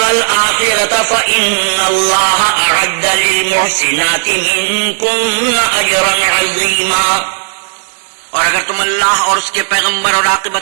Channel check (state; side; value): silent; left; digital silence